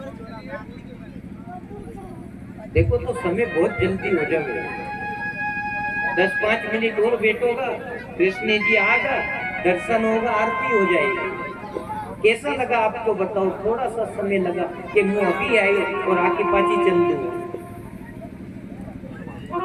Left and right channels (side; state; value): both; identical; correlation 1.00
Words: देखो तो समय बहुत जल्दी हो जाएगा, 10-5 मिनट और बैठोगा, कृष्ण जी आगा, दर्शन होगा, आरती हो जाएगी। कैसा लगा आपको बताओ? थोड़ा सा समय लगा कि मैं अभी आई और आके पाची चल दूँ।